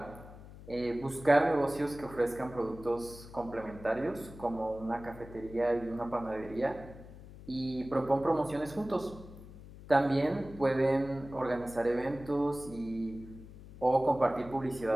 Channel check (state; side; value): noise; left; hum, 16 dB below the sound